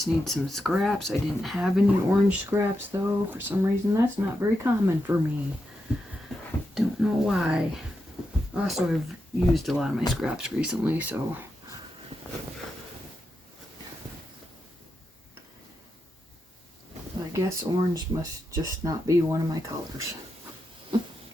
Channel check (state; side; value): normal; both; correlation 0.86